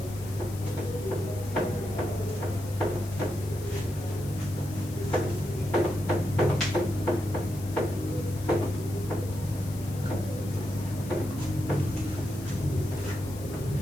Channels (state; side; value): noise; left; hiss, 16 dB below the sound